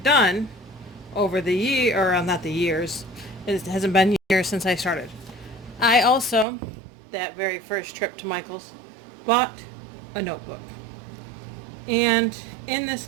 done over the year, or not the years, it hasn't been years since I started. I also, that very first trip to Michael's, bought a notebook. And in this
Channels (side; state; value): left; drops out; at 6.5 s